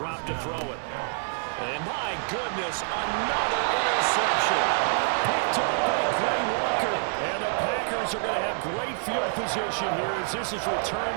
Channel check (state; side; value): silent; left; 60 dB below the other